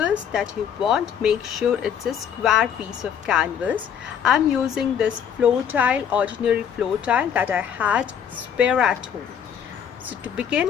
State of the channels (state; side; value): quieter; right; 8.3 dB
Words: that you want. Make sure it's a square piece of canvas. I'm using this floor tile, ordinary floor tile that I had spare at home. So to